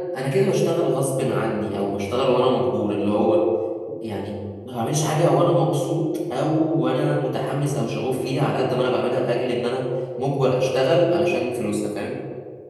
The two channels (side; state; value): both; identical; correlation 1.00